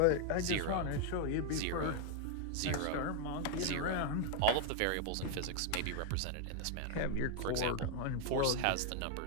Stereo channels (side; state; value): both; different; correlation 0.00